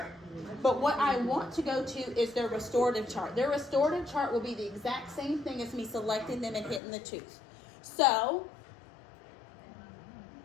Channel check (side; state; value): right; drops out; at 6.8 s